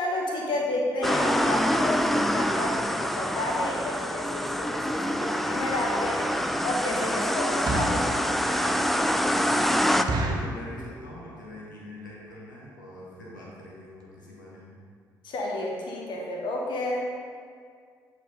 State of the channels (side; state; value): both; normal; correlation 0.79